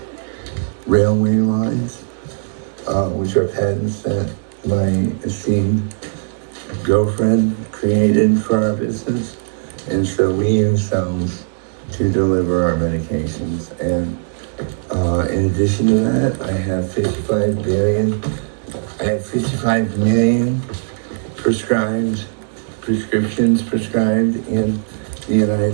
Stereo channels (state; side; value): silent; left; digital silence